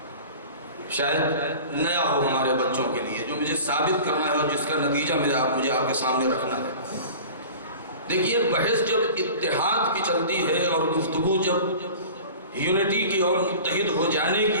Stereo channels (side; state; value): both; inverted; correlation -0.39